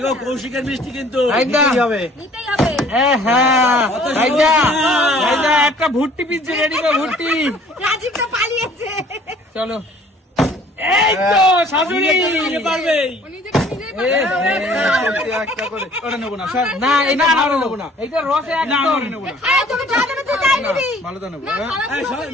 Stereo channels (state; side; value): normal; both; correlation 0.55